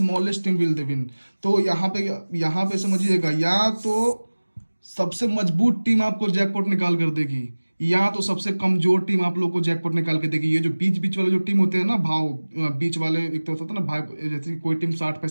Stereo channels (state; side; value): inverted; both; correlation -1.00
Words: team will the win. तो यहाँ पे समझिएगा, या तो सबसे मजबूत टीम आपको जैकपॉट निकाल कर देगी, या तो सबसे कमजोर टीम आप लोग को जैकपॉट निकाल के देगी। ये जो बीच बीच वाले जो टीम होते हैं ना, बीच वाले, एक तो होता है ना भाई, जैसे कोई टीम 60